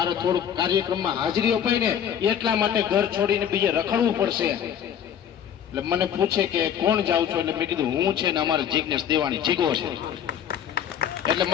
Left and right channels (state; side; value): quieter; right; 9.2 dB